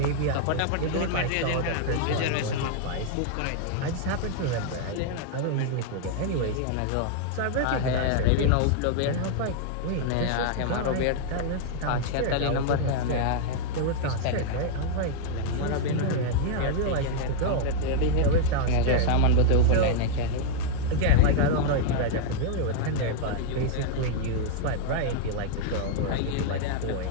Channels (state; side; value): different; both; correlation -0.01